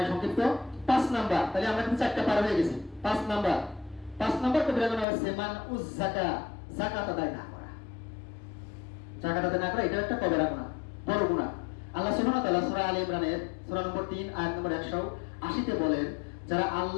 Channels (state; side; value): drops out; right; at 5.1 s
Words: সংক্ষিপ্ত। 5 নাম্বার, তাহলে আমরা কিন্তু 4টা পার হয়ে গেছি। 5 নাম্বার কবিরা গুনাহ হচ্ছে মান উজ যাকাত আদায় না করা। যাকাত আদায় না করা, এটা একটা কবিরা গুনাহ, বড় গুনাহ। আল্লাহ সুবহানাহু ওয়া তাআলা সূরা আলে ইমরানের সূরা নম্বর 3 আয়াত নম্বর 180 তে বলেন, যারা